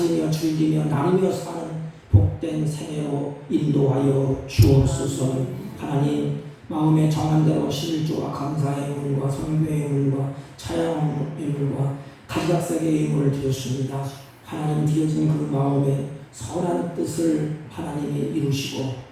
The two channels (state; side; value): identical; both; correlation 1.00